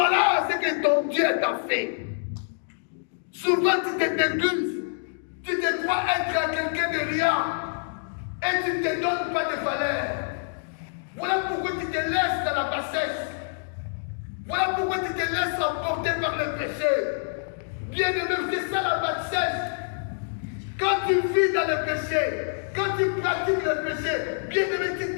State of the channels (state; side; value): silent; right; digital silence